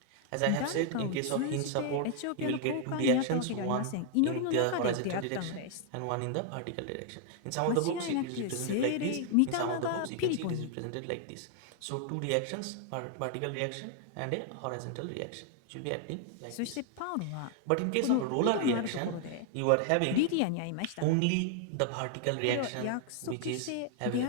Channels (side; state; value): both; different; correlation 0.00